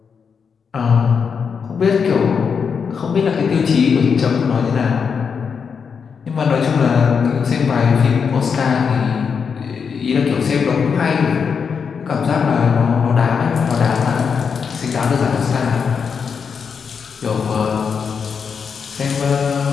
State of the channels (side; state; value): right; quieter; 6.2 dB